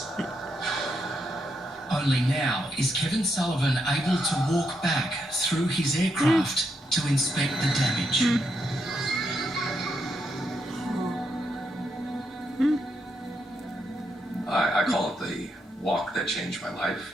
Only now is Kevin Sullivan able to walk back through his aircraft to inspect the damage. I call it the walk that changed my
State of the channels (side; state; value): both; normal; correlation 0.80